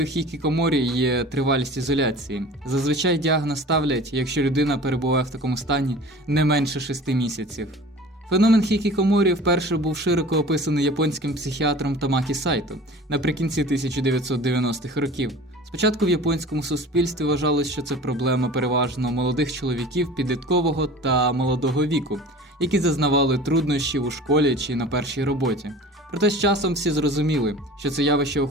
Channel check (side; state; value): both; normal; correlation 0.42